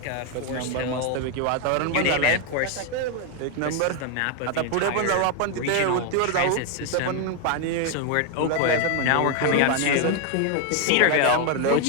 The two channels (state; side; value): different; both; correlation 0.01